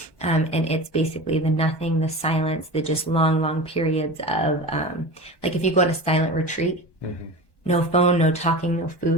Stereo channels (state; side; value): late; right; 1.1 ms